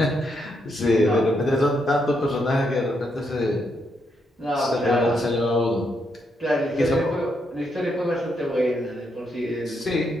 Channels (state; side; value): normal; both; correlation 0.79